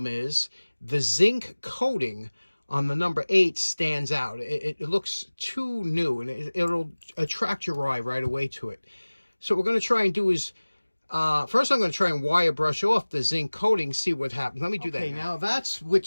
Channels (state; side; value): inverted; both; correlation -1.00